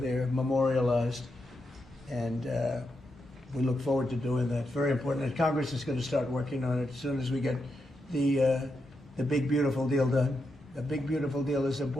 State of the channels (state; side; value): normal; both; correlation 0.84